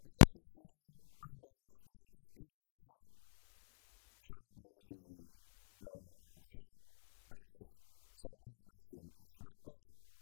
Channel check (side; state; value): right; silent; digital silence